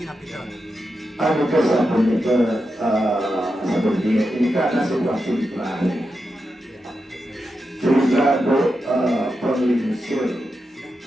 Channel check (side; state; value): both; normal; correlation 0.88